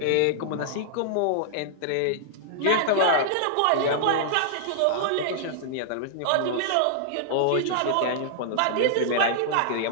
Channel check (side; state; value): both; different; correlation -0.01